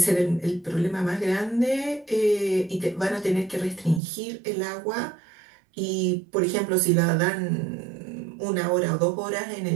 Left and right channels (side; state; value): left; drops out; at 4.0 s